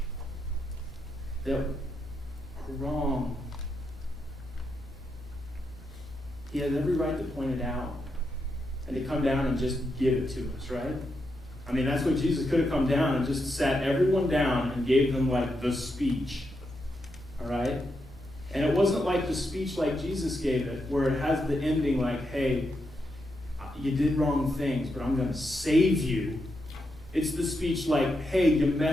that are wrong. He has every right to point it out and to come down and just give it to us, right? I mean, that's what Jesus could have come down and just sat everyone down and gave them like the speech, all right? And it wasn't like the speech like Jesus gave it, where it has the ending like, hey, you did wrong things, but I'm going to save you. It's the speech like, hey, you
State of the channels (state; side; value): normal; both; correlation 0.83